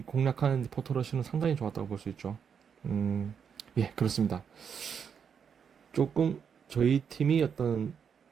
공략하는 포토러시는 상당히 좋았다고 볼 수 있죠. 예, 그렇습니다. 조금 저희 팀이 어떤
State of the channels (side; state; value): left; quieter; 7.1 dB